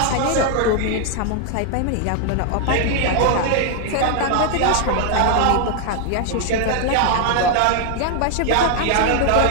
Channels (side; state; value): both; different; correlation 0.00